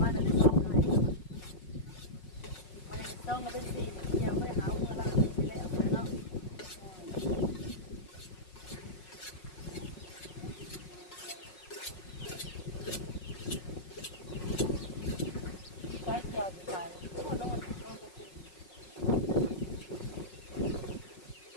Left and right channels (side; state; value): right; late; 5.5 ms